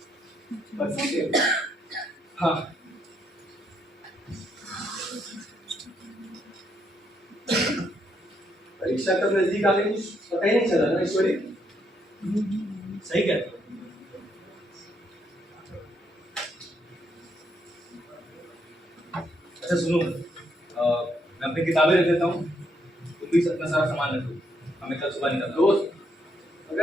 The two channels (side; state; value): both; normal; correlation 0.75